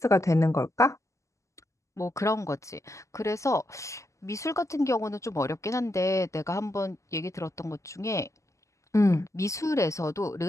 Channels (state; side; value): late; right; 0.15 ms